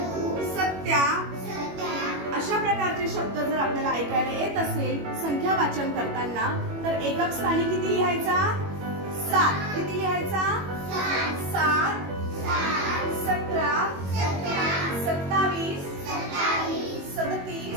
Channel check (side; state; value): left; late; 21 ms